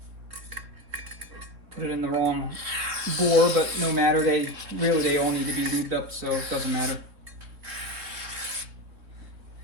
in the wrong bore, but no matter. They all need to be lubed up, so it doesn't matter.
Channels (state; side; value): late; left; 3.9 ms